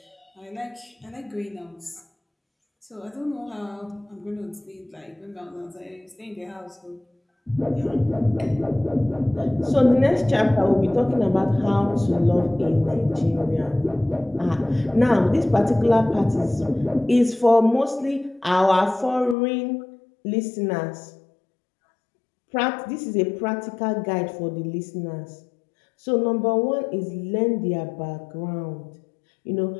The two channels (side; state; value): right; drops out; at 19.4 s